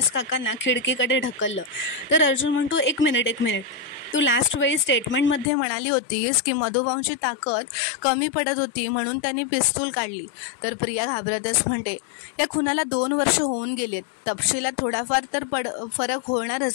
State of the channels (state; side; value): drops out; right; at 5.5 s